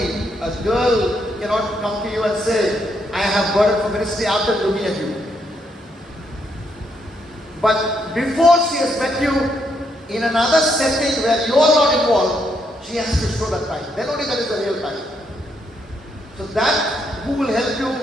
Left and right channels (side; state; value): both; normal; correlation 0.76